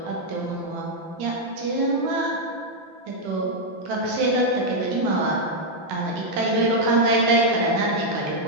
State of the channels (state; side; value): late; left; 5.9 ms